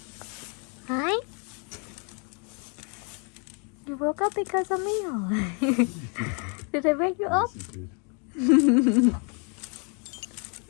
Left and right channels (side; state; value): right; quieter; 36.9 dB